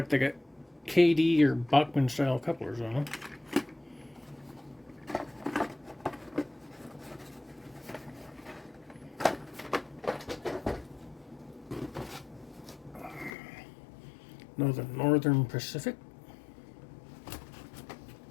they got KD or Bachmann style couplers on them. Northern Pacific.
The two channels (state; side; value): drops out; right; at 13.3 s